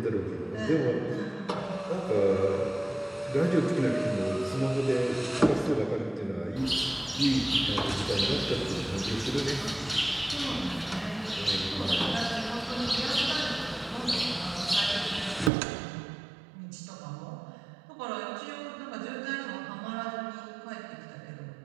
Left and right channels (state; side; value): drops out; left; at 15.5 s